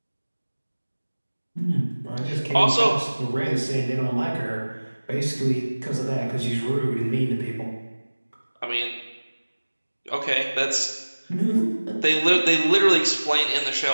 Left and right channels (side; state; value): both; inverted; correlation -1.00